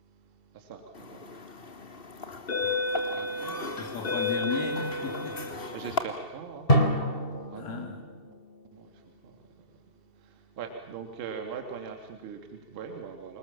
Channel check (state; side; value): late; right; 2.7 ms